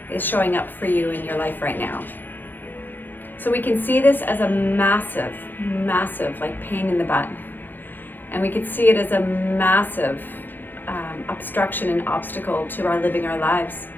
is showing up for you in your life right now? So we can see this as a massive like pain in the butt. And we could see it as a massive obstruction and obstacle to our living our lives.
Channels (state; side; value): late; right; 0.090 ms